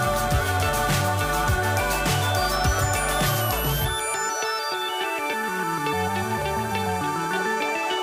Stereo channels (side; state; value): both; identical; correlation 1.00